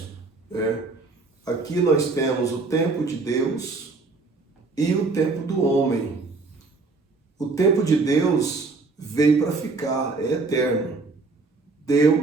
Aqui nós temos o tempo de Deus e o tempo do homem. O tempo de Deus veio para ficar, é eterno.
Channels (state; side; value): quieter; left; 3.8 dB